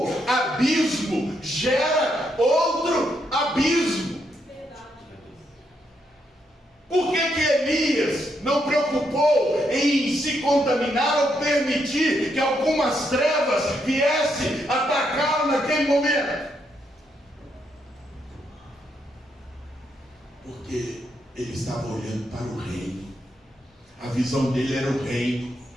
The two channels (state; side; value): normal; both; correlation 0.78